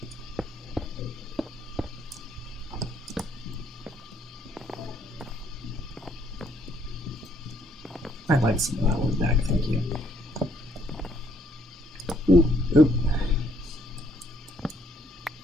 I'd like some of that one back, thank you. Oop, oop.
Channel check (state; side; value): normal; both; correlation 0.68